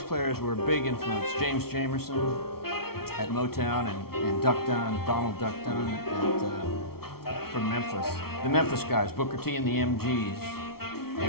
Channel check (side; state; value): right; late; 0.94 ms